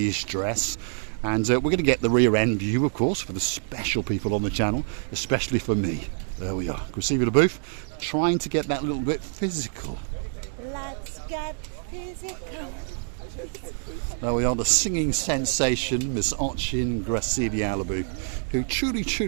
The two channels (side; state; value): left; silent; digital silence